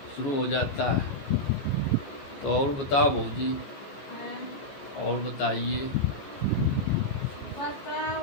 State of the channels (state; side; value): late; right; 14 ms